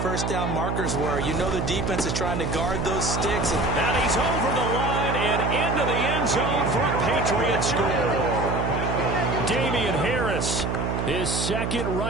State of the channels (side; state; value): right; noise; hum, 1 dB below the sound